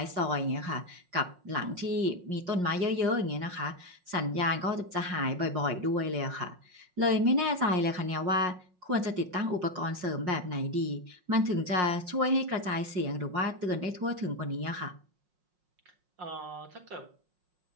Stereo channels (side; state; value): left; late; 5.5 ms